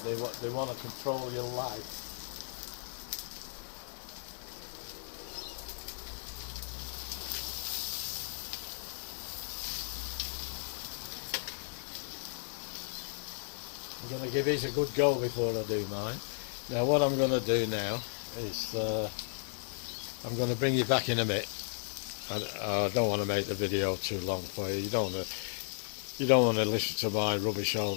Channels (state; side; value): silent; right; 55 dB below the other